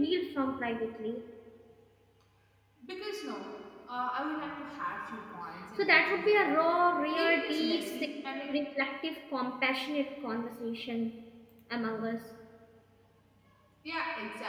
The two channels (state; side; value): identical; both; correlation 1.00